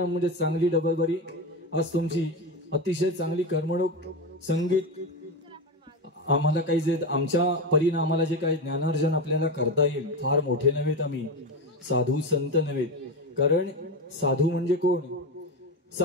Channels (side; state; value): both; normal; correlation 0.17